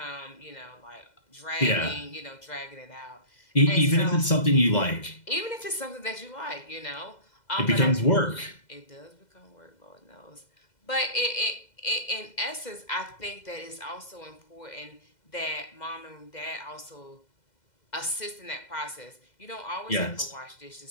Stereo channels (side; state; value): right; late; 2.0 ms